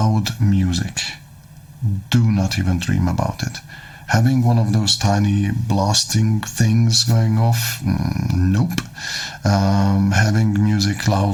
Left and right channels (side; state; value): both; identical; correlation 1.00